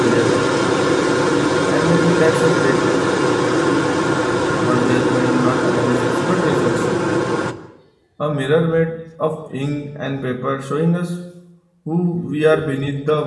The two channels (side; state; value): both; identical; correlation 1.00